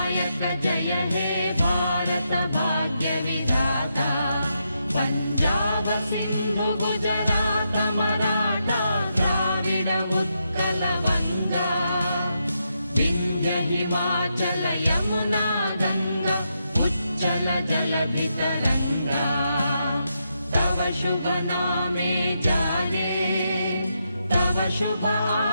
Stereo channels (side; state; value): both; inverted; correlation -0.83